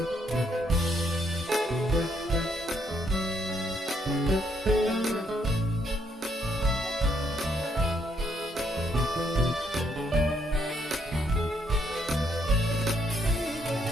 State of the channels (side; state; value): both; normal; correlation 0.72